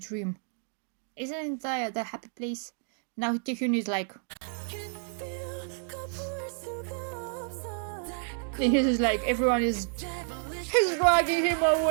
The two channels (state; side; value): silent; left; 58 dB below the other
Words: Isn't that the happy place? Now Taehyun is like, and he's like, everyone is dragging him